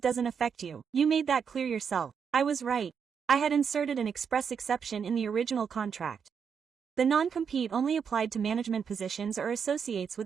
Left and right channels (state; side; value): quieter; left; 6.8 dB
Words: affect you. You made that clear yourself. I was right. I had inserted an express exception in the original contract. The non-compete only applied to management positions or associates